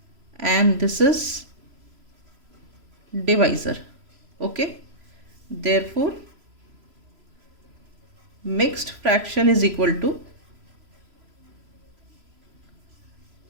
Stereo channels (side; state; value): left; late; 3.0 ms